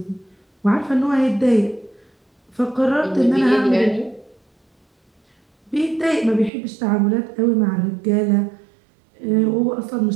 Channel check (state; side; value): drops out; left; at 6.5 s